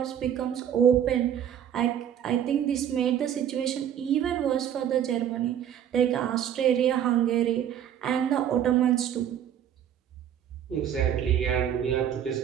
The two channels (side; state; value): left; quieter; 9.7 dB